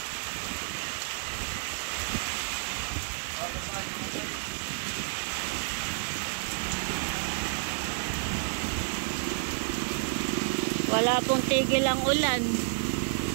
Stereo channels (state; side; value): silent; left; digital silence